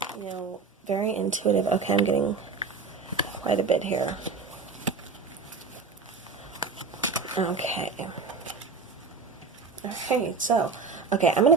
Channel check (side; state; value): left; quieter; 4.7 dB